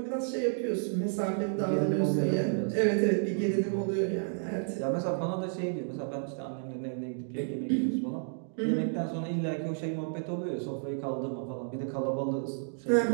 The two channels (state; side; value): silent; left; digital silence